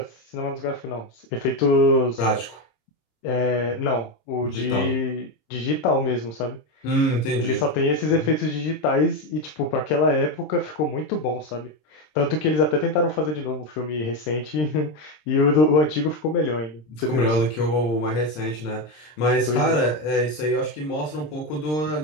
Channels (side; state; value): right; late; 26 ms